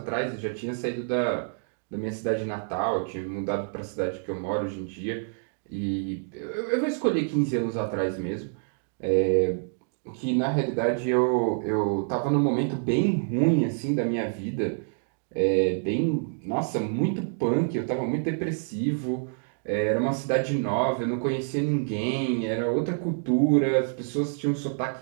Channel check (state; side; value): silent; left; digital silence